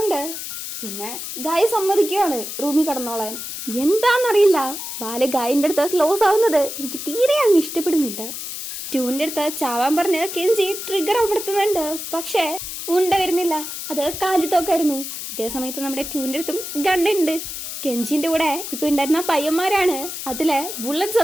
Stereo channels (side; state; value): left; noise; hiss, 7 dB below the sound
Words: പിന്നെ ഗായ് സമ്മതിക്കുവാണ് റൂമിൽ കടന്നോളാൻ. എന്താന്നറിയില്ല, വാല് ഗായിന്റെ അടുത്ത് ക്ലോസ് ആവുന്നത് എനിക്ക് തീരെ അങ്ങ് ഇഷ്ടപ്പെടുന്നില്ല. ട്യൂന്റെ അടുത്ത് ചാവാൻ പറഞ്ഞ് കെഞ്ചി ട്രിഗർ അമർത്തുന്നുണ്ട്. പക്ഷെ ഉണ്ട വരുന്നില്ല, അത് കാലിത്തോക്കായിരുന്നു. ഇതേ സമയത്ത് നമ്മുടെ ട്യൂന്റെ അടുത്തും ഗണ്ണുണ്ട്. കെഞ്ചിന്റെ കൂടെ ഇപ്പൊ ഉണ്ടായിരുന്ന പയ്യന്മാരാണ് അതിലെ ബുള്ളറ്റ്സ്